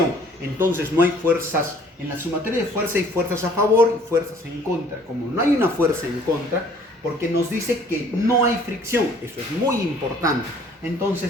Entonces no hay fuerzas, en la sumatoria de fuerzas hay fuerzas a favor y fuerzas en contra. Como no hay una fuerza en contra, porque nos dice que no hay fricción, eso es muy importante.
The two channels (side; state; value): both; normal; correlation 0.56